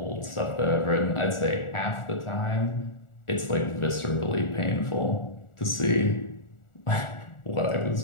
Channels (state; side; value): late; right; 1.4 ms